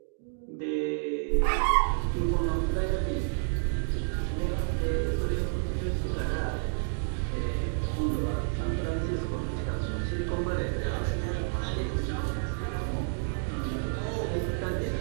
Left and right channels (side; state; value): left; silent; digital silence